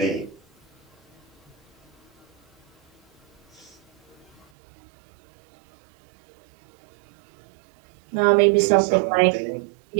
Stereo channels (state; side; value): drops out; left; at 4.5 s